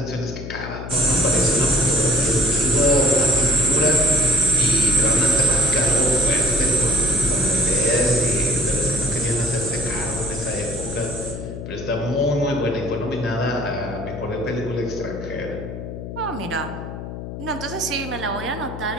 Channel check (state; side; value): noise; left; hum, 9 dB below the sound